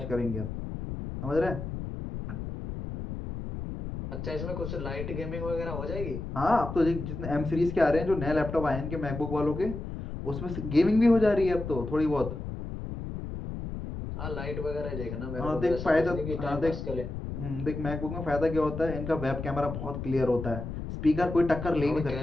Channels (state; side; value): noise; left; rumble, 7 dB below the sound